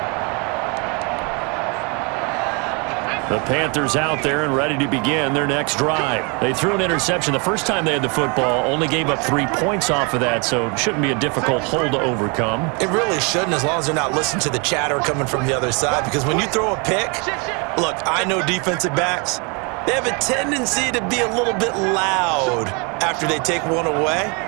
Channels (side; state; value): left; quieter; 32.3 dB